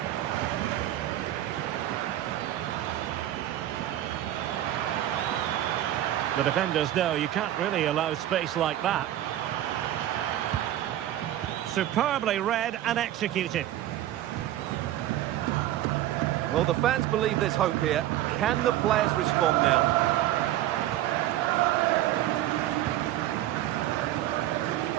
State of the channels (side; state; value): left; quieter; 13.4 dB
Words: The defenders know you can't really allow space like that. Superbly read and executed. Well, the fans believe there's hope here. Can the players respond now?